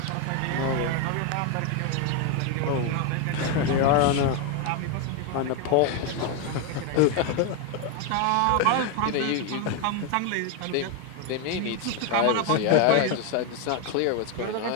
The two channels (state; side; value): different; both; correlation 0.01